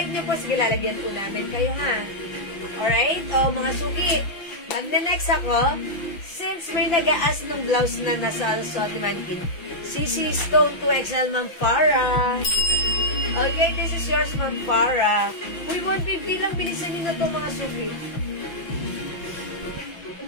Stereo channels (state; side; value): late; right; 5.9 ms